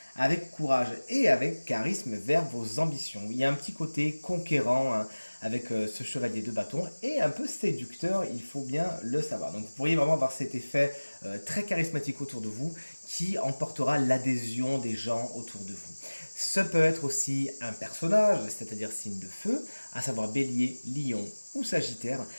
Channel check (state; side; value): inverted; both; correlation -1.00